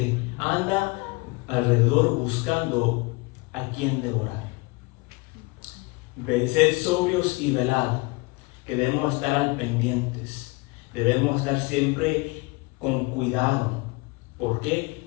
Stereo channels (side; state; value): right; quieter; 25.6 dB